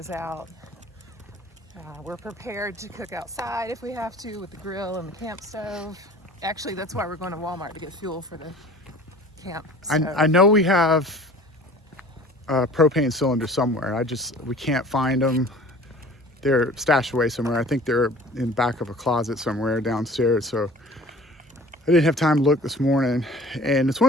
out. We're prepared to cook outside if we have to with the grill and the camp stove. Actually, that's why we're going to Walmart, to get fuel for the camp. I know we have a propane cylinder somewhere. We can't find them. They're stashed away somewhere. I think they're in the back of a closet somewhere downstairs. So I didn't have time to look this morning. And it's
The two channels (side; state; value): both; normal; correlation 0.46